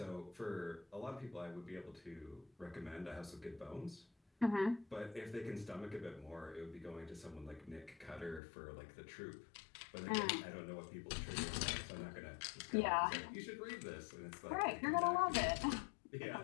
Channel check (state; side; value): drops out; right; at 8.4 s